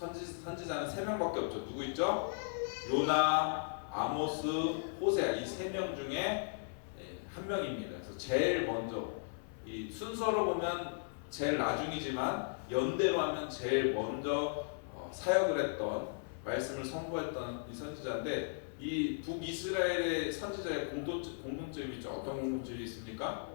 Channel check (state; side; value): silent; right; 53 dB below the other